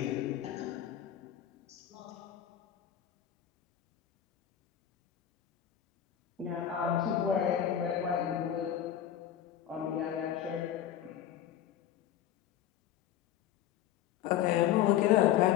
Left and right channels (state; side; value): quieter; right; 10.7 dB